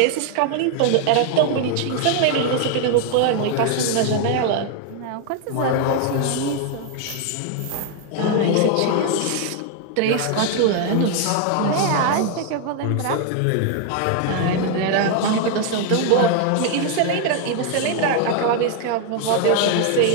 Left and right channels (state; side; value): different; both; correlation 0.00